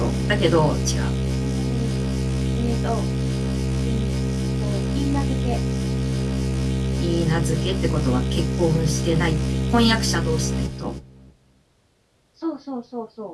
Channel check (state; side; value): identical; both; correlation 1.00